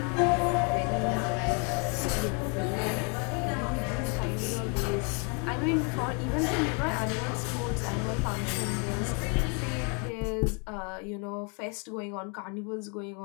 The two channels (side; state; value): right; quieter; 36.1 dB